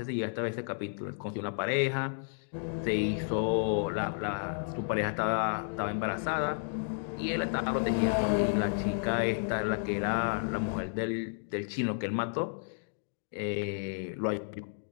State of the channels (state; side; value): silent; right; digital silence